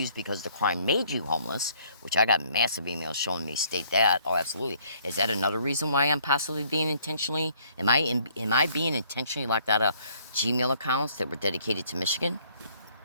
because the crime made you homeless, which I got massive emails showing me state that. Oh, absolutely. Is that another reason why I'm possibly being intentionally, am I being intentionally locked out of Gmail accounts that were dedicated to Michigan?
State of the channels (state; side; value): inverted; both; correlation -0.63